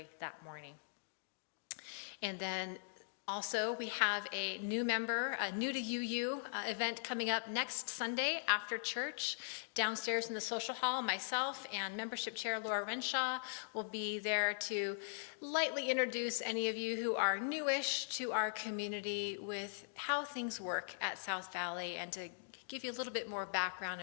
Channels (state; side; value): silent; right; digital silence